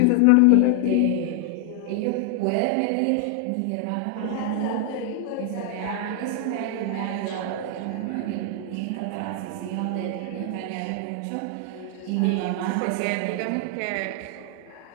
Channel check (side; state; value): both; different; correlation 0.00